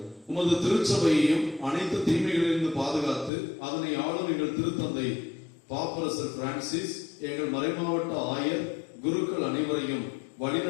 உமது திருச்சபையையும் அனைத்து தீமைகளிலிருந்து பாதுகாத்து அதனை ஆளும் எங்கள் திருத்தந்தை பாப்பரசர் பிரான்சிஸ், எங்கள் மறைமாவட்ட ஆயர், குருக்கள் அனைவரையும்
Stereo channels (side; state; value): right; drops out; at 3.3 s